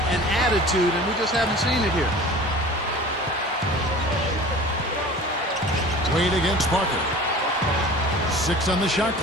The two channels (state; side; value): normal; both; correlation 0.41